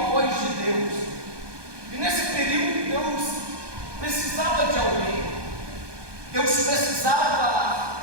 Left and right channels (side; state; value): left; late; 1.2 ms